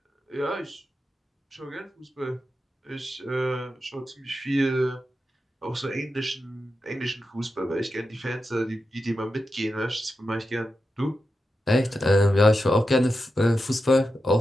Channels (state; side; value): normal; both; correlation 0.89